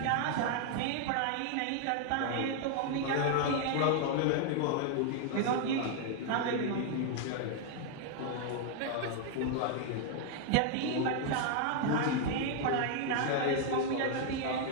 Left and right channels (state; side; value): different; both; correlation 0.00